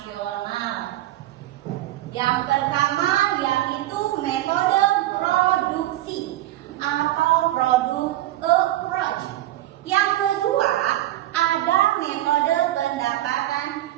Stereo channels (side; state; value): left; quieter; 15.0 dB